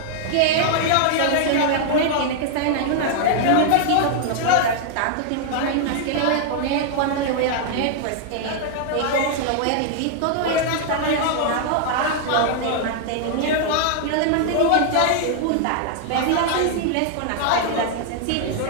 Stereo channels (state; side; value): different; both; correlation 0.00